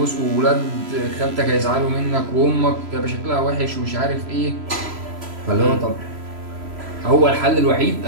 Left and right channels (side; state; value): left; late; 3.0 ms